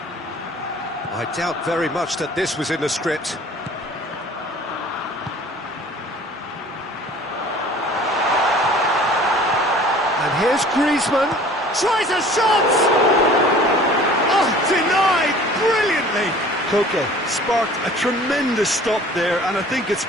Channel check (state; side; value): normal; both; correlation 0.48